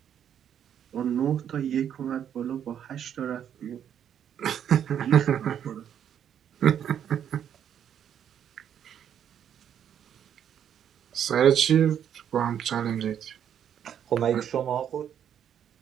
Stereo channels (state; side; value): quieter; left; 9.2 dB